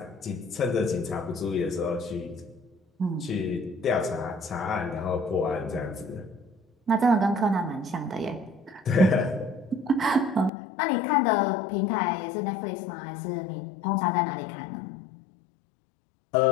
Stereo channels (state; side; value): drops out; right; at 10.5 s